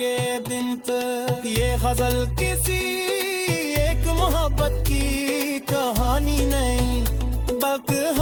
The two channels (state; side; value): identical; both; correlation 1.00